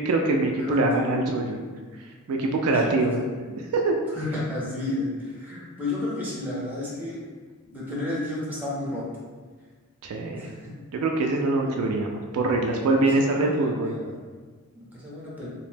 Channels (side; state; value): both; normal; correlation 0.29